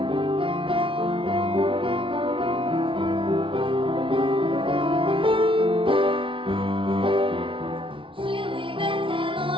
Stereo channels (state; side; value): late; left; 0.25 ms